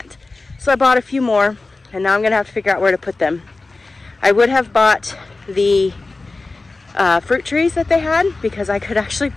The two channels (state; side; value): quieter; right; 3.4 dB